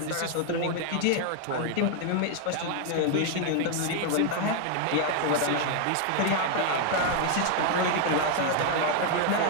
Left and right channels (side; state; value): both; different; correlation 0.00